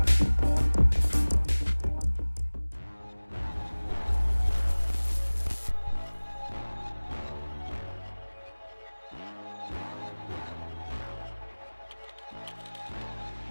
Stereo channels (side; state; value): both; inverted; correlation -1.00